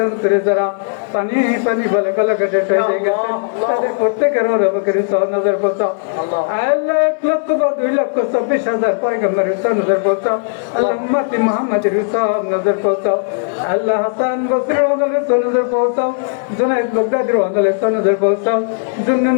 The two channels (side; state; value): right; silent; 69 dB below the other